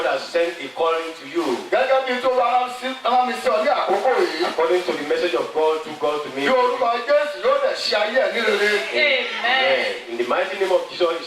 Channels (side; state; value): both; identical; correlation 1.00